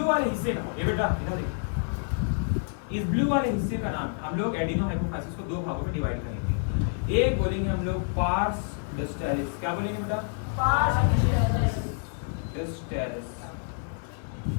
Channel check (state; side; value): silent; right; 59 dB below the other